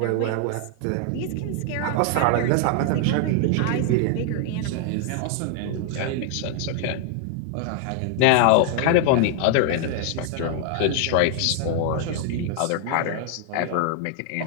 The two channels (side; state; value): both; different; correlation 0.00